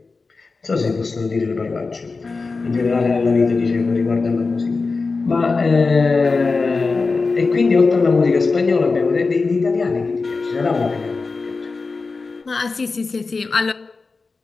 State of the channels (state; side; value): quieter; right; 4.1 dB